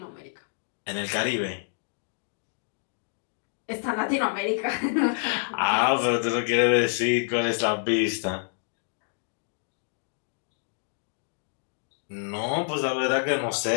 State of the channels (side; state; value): right; silent; digital silence